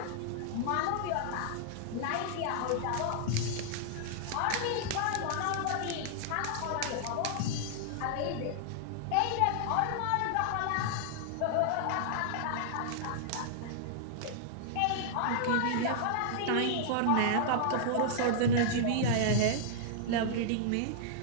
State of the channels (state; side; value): different; both; correlation -0.01